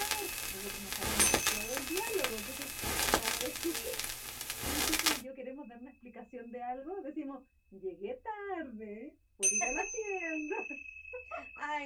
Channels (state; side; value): identical; both; correlation 1.00